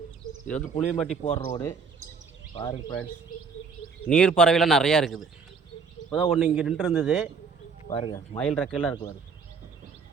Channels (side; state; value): left; quieter; 5.2 dB